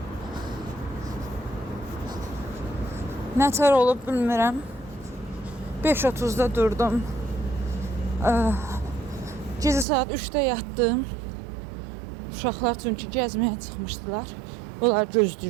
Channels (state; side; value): drops out; left; at 9.9 s